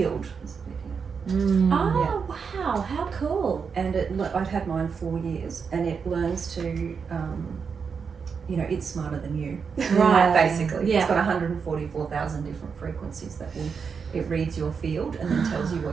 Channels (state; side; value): quieter; left; 5.9 dB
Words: Oh wow, how cool! And I've had mine 4 years, and it learns to, you know, it's smarter than you, Right. Basically, Yeah. It's got 144,000 different frequencies that it reads your field and then tells you